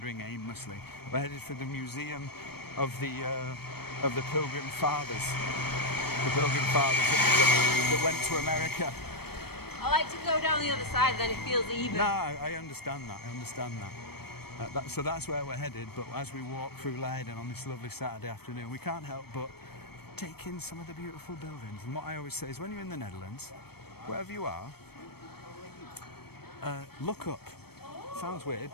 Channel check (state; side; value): late; right; 0.96 ms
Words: aimlessly. We're headed for the museum of the Pilgrim Fathers. The Pilgrim Fathers that went to America. I like to go down the other side, then it feels even. No, I understand that, so that's where we're headed, but as we walk through Leiden on this lovely Saturday afternoon, we can't help but take in some of the beautiful buildings. And what I always say is when you're in the Netherlands, wherever you are, look up. Sounds weird,